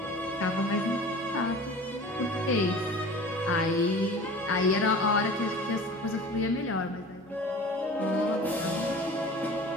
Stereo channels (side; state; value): both; normal; correlation 0.40